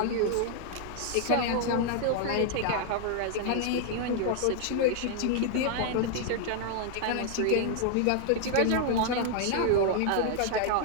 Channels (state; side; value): different; both; correlation 0.00